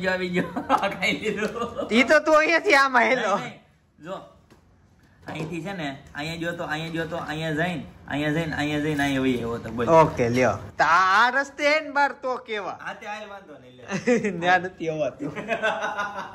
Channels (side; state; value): both; identical; correlation 1.00